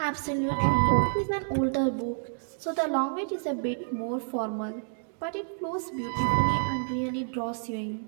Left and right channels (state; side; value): silent; left; digital silence